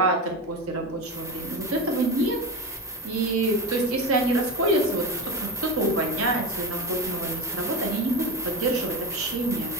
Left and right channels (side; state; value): both; normal; correlation 0.22